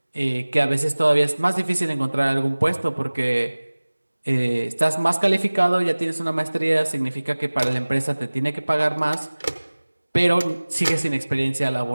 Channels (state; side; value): inverted; both; correlation -1.00